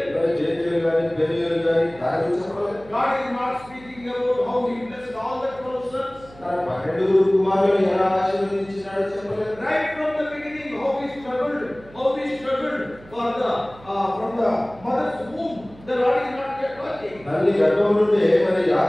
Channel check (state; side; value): noise; right; hum, 22 dB below the sound